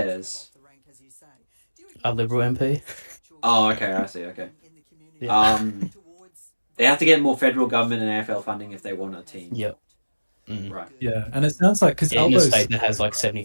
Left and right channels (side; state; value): both; inverted; correlation -1.00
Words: A Liberal MP. Oh, okay, I see. Okay. Yeah. They have to get more federal government and AFL funding if they want a team. Yep. Right. Yeah, and it sounds like because in a state that has